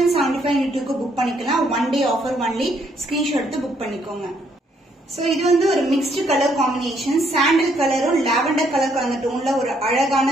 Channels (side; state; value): both; normal; correlation 0.70